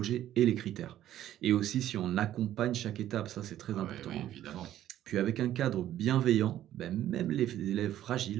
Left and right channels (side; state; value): left; quieter; 12.4 dB